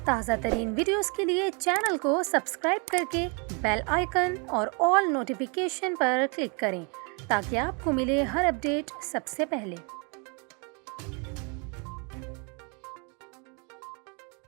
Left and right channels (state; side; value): quieter; left; 34.3 dB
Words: تازہ ترین ویڈیوز کے لیے چینل کو سبسکرائب کر کے بیل آئیکن اور آل نوٹیفیکیشن پر کلک کریں تاکہ آپ کو ملے ہر اپڈیٹ سب سے پہلے۔